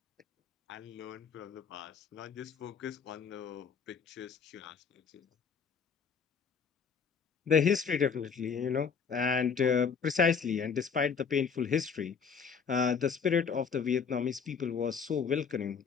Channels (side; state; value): right; quieter; 6.2 dB